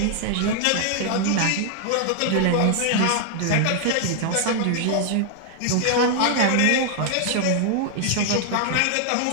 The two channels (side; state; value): both; different; correlation 0.00